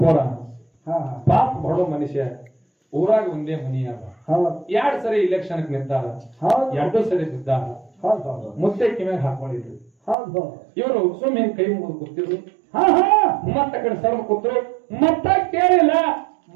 ಹಾ ಪಾಪ ಬಡೋ ಮನುಷ್ಯ. ಊರಾಗ ಒಂದೇ ಮನಿ ಅದ. ಹೌದು 2 ಸರಿ ಇಲೆಕ್ಷನ್ ನಿಂತಾರ. ಹೌದು 2 ಸರಿ ಬಿದ್ದಾರ. ಹೌದು ಹೌದು ಮುತ್ತೆ ಕಿಮ್ಯಾಗ ಹಾಕೊಂಡಿದ್ರು. ಹೌದು ಇವರು ಸುಮ್ಮನೆ ಕೈ ಮುಗಿದು ಕೂತಿದ್ರು. ಹಾ ಹಾ ಮತ್ತ ಕಡೆ ಸರ್ವ ಕೂತ್ರು. ಮತ್ತ ಕೇಳಿಲ್ಲ.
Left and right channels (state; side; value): drops out; left; at 10.2 s